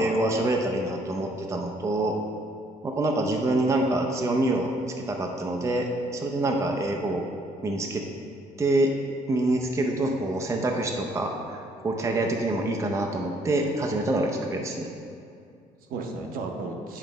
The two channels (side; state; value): both; normal; correlation 0.66